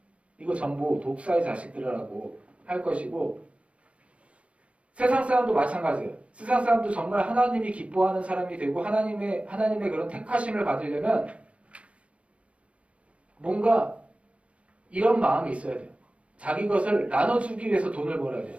이거 전부 독사의 자식들이라고 할 것이고, 세상 사람도 마찬가지예요. 세상 사람도 정말 하나님이 기뻐하는 사람이 되고 하나님의 그런 택하심을 받으려면 뭔가 이런 마음이 있어야 돼요. 자기 것을 나눠주기 위해서 돈을 벌어야 돼요.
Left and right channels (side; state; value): left; late; 0.062 ms